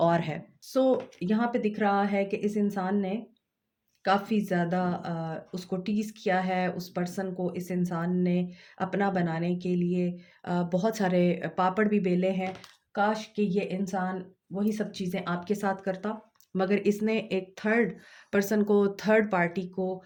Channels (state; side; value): identical; both; correlation 1.00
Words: है। यहाँ पे दिख रहा है कि इस इंसान ने काफ़ी ज़्यादा उसको टीज़ किया है, उस पर्सन को इस इंसान ने अपना बनाने के लिए बहुत सारे पापड़ भी बेले हैं। काश कि ये इंसान वही सब चीज़ें आपके साथ करता, मगर इसने एक थर्ड पर्सन को, थर्ड पार्टी को